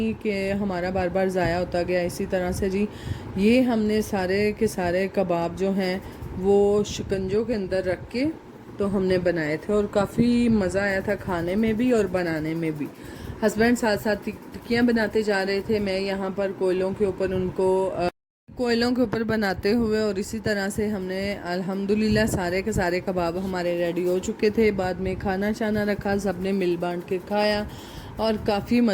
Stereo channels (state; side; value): identical; both; correlation 1.00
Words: कि हमारा बार बार ज़ाया होता गया। इसी तरह से जी ये हमने सारे के सारे कबाब जो हैं वो शिकंजों के अंदर रख के तो हमने बनाए थे और काफ़ी मज़ा आया था खाने में भी और बनाने में भी। हस्बैंड साथ साथ टिक्कियाँ बनाते जा रहे थे, मैं यहाँ पर कोयलों के ऊपर बनाते हुए। और इसी तरह से हमने अल्हम्दुलिल्लाह सारे के सारे कबाब हमारे रेडी हो चुके थे। बाद में खाना शाना रखा, सबने मिल बांट के खाया और काफ़ी